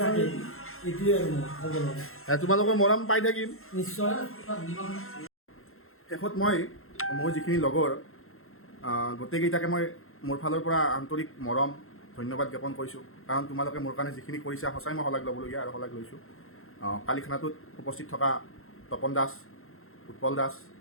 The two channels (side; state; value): right; late; 0.61 ms